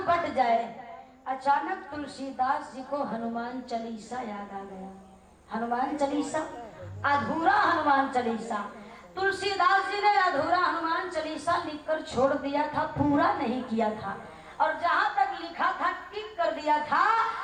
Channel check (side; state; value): both; identical; correlation 1.00